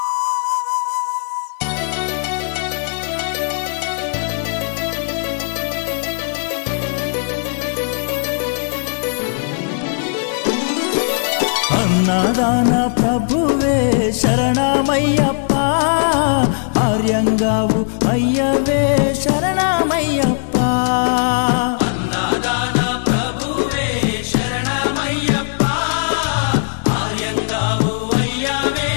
अन्नदान प्रभुवे शरणमय्यप्पा आर्यंगावु अय्यवे शरणमय्यप्पा अन्नदान प्रभुवे शरणमय्यप्पा आर्यंगावु अय्यवे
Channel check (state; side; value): silent; right; digital silence